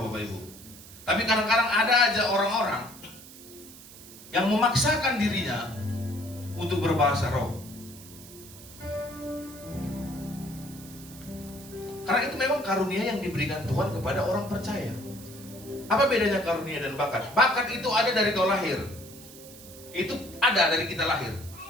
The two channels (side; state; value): right; noise; hiss, 18 dB below the sound